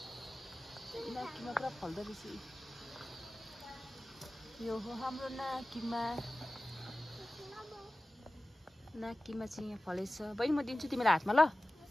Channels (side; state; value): both; normal; correlation 0.96